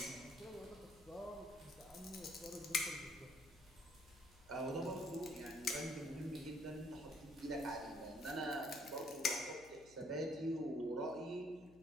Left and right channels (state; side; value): noise; left; hum, 23 dB below the sound